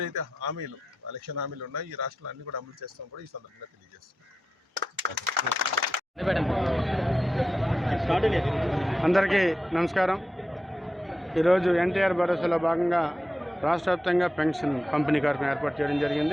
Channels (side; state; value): both; normal; correlation 0.89